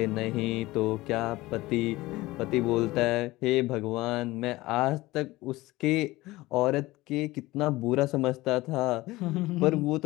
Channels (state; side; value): quieter; right; 19.1 dB